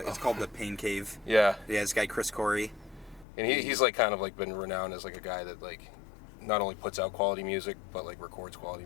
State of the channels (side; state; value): right; drops out; at 3.2 s